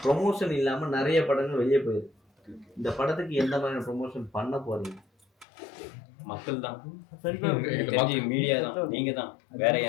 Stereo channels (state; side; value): drops out; right; at 5.5 s